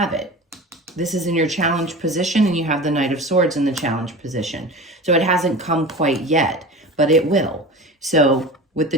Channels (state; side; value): normal; both; correlation 0.33